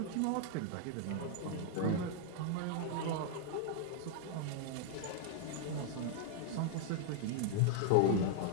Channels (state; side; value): different; both; correlation 0.00